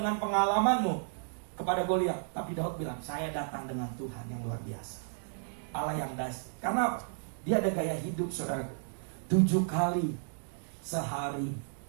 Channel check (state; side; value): silent; left; digital silence